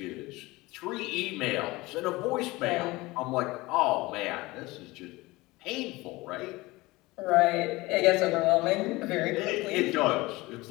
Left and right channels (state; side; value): quieter; right; 21.1 dB